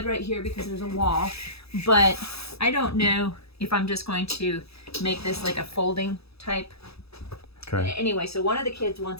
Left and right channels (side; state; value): right; late; 0.78 ms